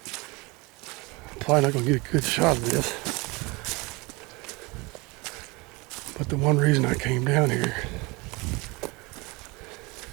I'm probably not going to get a good shot of this, but the one reason I came down here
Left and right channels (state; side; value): quieter; left; 26.1 dB